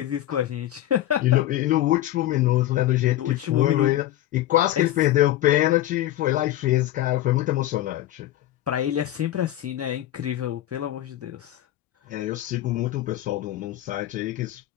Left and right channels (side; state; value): right; quieter; 13.8 dB